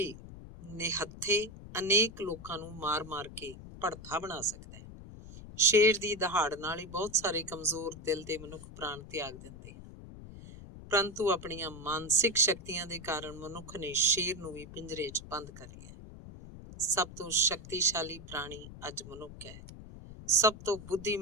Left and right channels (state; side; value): noise; left; rumble, 14 dB below the sound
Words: ਨਿਹੱਥੇ ਅਨੇਕ ਲੋਕਾਂ ਨੂੰ ਮਾਰ-ਮਾਰ ਕੇ ਭੜਥਾ ਬਣਾ ਸਕਦਾ ਹੈ। ਸ਼ੇਰ ਦੀ ਦਹਾੜ ਨਾਲ ਹੀ ਬਹੁਤ ਸਾਰੇ ਕਮਜ਼ੋਰ ਦਿਲ ਦੇ ਮਨੁੱਖ ਪ੍ਰਾਣ ਤਿਆਗ ਦਿੰਦੇ ਹਨ। ਪਰੰਤੂ ਆਪਣੀਆਂ ਮਾਨਸਿਕ ਸ਼ਕਤੀਆਂ ਦੇ ਕਾਰਨ ਮਨੁੱਖ ਨੇ ਸ਼ੇਰ ਨੂੰ ਵੀ ਪਿੰਜਰੇ 'ਚ ਬੰਦ ਕਰ ਲਿਆ। ਸਭ ਤੋਂ ਸ਼ਕਤੀਸ਼ਾਲੀ ਪ੍ਰਾਣੀ ਅੱਜ ਮਨੁੱਖ ਹੈ। ਸਭ ਤੋਂ